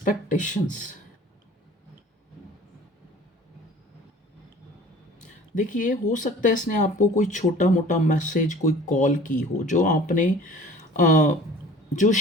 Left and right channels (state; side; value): normal; both; correlation 0.46